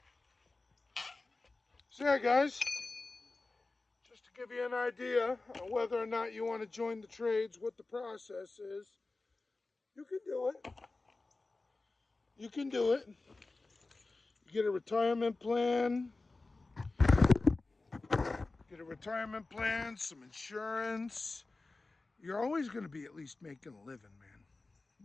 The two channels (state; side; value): quieter; right; 3.4 dB